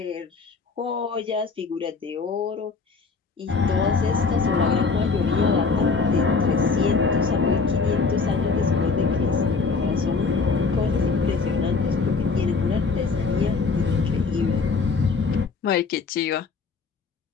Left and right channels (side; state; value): right; quieter; 4.6 dB